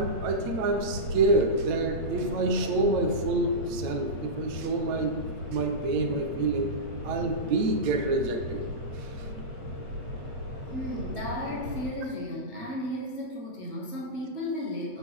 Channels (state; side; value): late; left; 8.9 ms